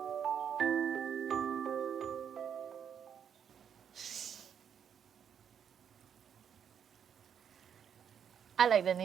I like the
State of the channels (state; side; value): quieter; left; 8.1 dB